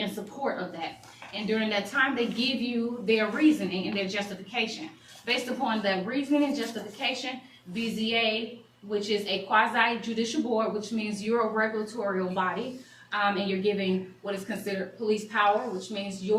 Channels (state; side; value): identical; both; correlation 1.00